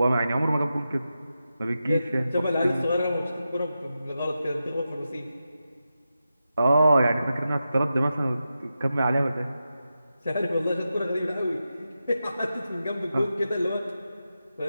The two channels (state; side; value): inverted; both; correlation -0.90